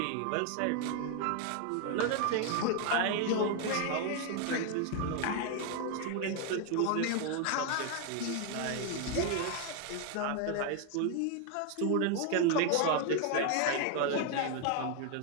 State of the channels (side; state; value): both; different; correlation 0.01